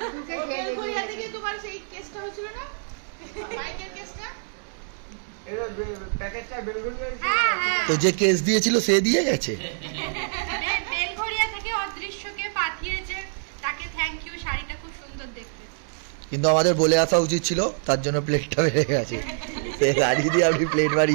বেলঘরিয়া থেকে তোমার সেই কেসটা হয়েছিল না মাইকের কেসটা। এটা প্যাকেটটা বেলগুলো। হ্যাঁ হ্যাঁ তো যে কেস দিয়েছিল সে দিয়ে গেছে। বেলঘরিয়া থেকে অদৃশ্যকে পাঠিয়েছে তাকে থ্যাংক ইউ। শাড়িটা খুব সুন্দর দেখতে। কিন্তু আমাদের বলে আসা উচিত ছিল, তার জন্য প্লেটটা বেড়ে গেছে। সে গাড়ি দিয়ে আপনি প্লেট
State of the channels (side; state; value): left; silent; digital silence